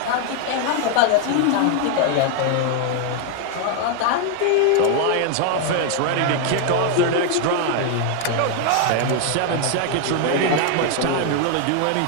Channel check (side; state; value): both; different; correlation 0.01